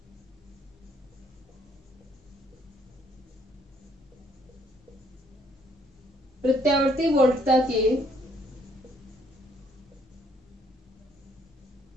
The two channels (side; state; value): both; normal; correlation 0.66